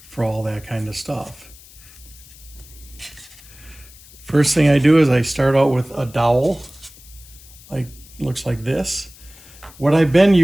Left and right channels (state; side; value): noise; left; hiss, 22 dB below the sound